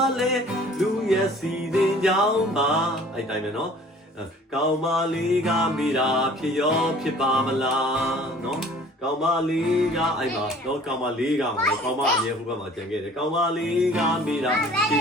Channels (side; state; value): both; normal; correlation 0.51